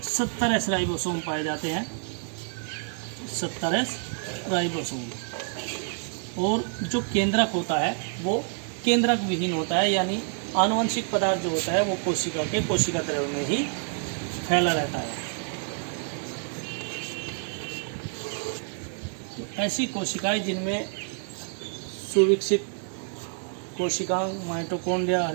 70 एस राइबोसोम पाए जाते हैं, 70 एस राइबोसोम। और जो केंद्रक होता है वो केंद्रक विहीन होता है, यानी आनुवंशिक पदार्थ जो होता है वो कोशिका द्रव्य में ही फैला रहता है। तो ऐसी कोशिकाएं जिनमें सुविकसित कोशिकांग, माइटोकॉन्ड्रिया,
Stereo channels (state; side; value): silent; left; 55 dB below the other